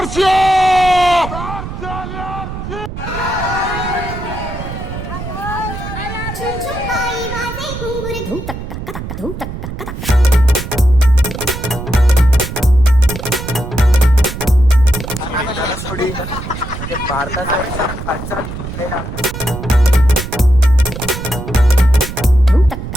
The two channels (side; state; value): right; noise; rumble, 8 dB below the sound